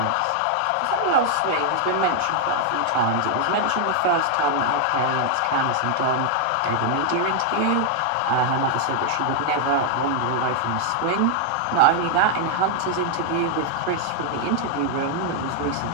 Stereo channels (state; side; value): different; both; correlation 0.00